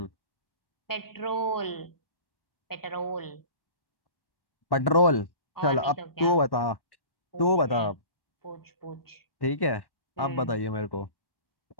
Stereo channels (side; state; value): right; late; 1.1 ms